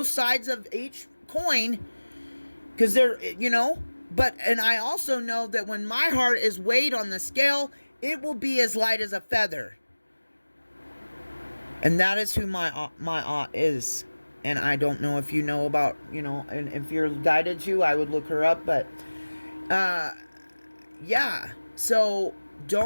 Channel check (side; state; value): both; inverted; correlation -1.00